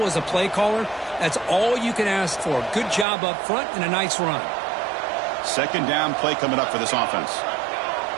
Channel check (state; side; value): drops out; left; at 3.1 s